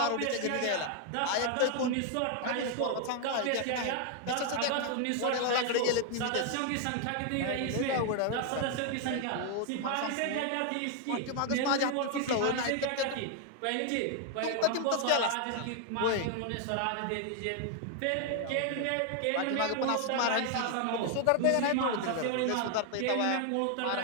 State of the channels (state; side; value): different; both; correlation 0.00